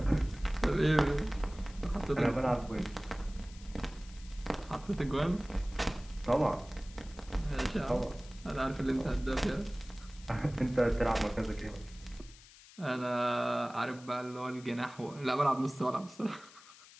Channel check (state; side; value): noise; left; hiss, 21 dB below the sound